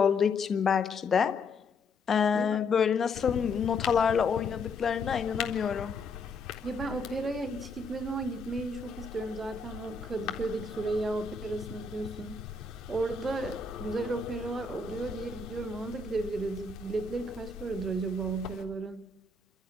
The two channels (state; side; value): quieter; right; 3.7 dB